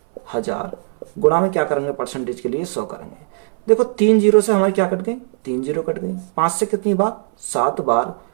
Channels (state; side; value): silent; left; 61 dB below the other